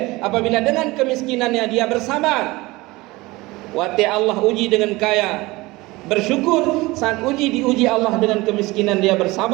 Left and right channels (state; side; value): quieter; left; 21.3 dB